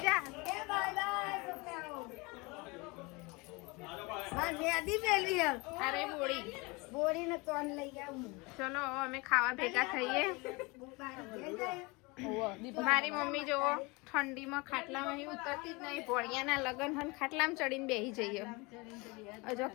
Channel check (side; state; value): right; quieter; 26.3 dB